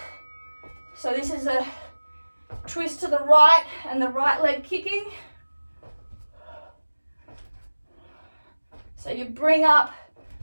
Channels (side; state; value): both; inverted; correlation -1.00